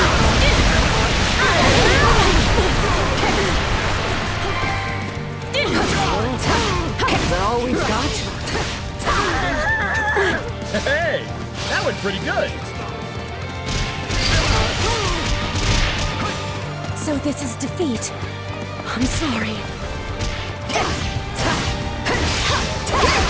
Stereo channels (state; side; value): identical; both; correlation 1.00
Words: Is that all we've got? Hey, that went pretty good. So this is defeat. I'm sorry.